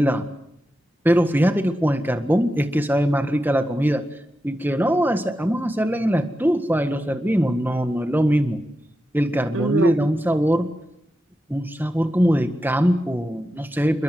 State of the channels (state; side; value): normal; both; correlation 0.90